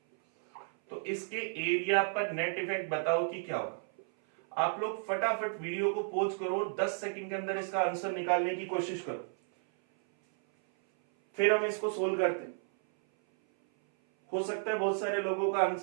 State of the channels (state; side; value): silent; left; 56 dB below the other